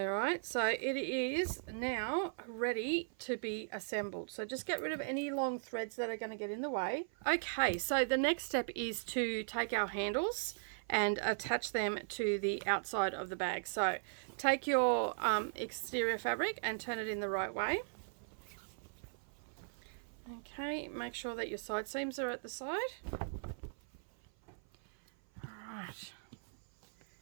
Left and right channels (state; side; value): silent; left; 52 dB below the other